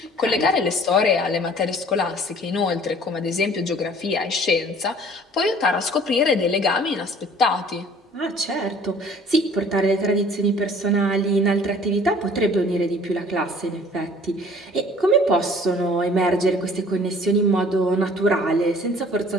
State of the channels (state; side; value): normal; both; correlation 0.52